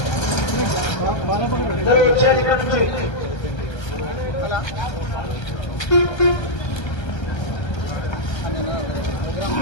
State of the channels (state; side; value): late; right; 1.3 ms